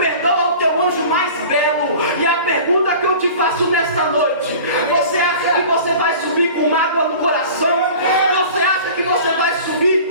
o teu anjo mais belo. E a pergunta que eu te faço nesta noite: você acha que você vai subir com mágoa no coração? Você acha que você vai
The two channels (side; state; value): both; inverted; correlation -0.41